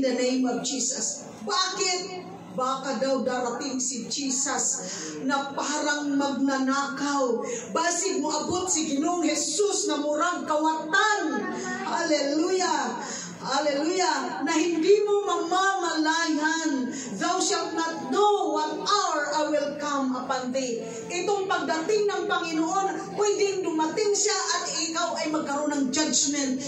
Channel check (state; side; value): identical; both; correlation 1.00